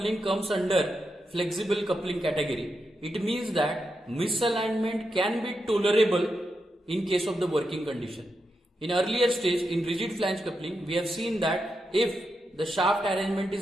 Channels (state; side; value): normal; both; correlation 0.86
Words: comes under flexible coupling category, it means that misalignment can be tolerable in case of the working condition. In earlier stage, in rigid flange coupling, we have seen that if the shaft arrangement